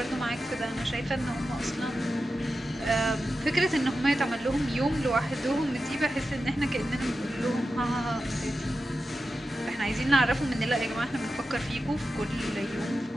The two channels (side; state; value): both; normal; correlation 0.92